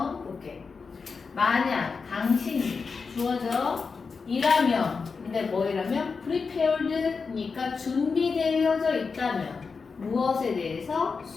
볼게. 만약 당신이 주어져 이라면 근데 뭐이라면 prepared니까 준비되어져 있다면 무엇에 대해서?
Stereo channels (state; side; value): quieter; right; 4.9 dB